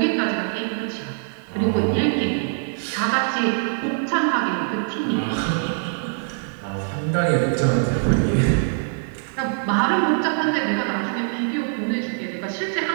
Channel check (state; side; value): silent; left; digital silence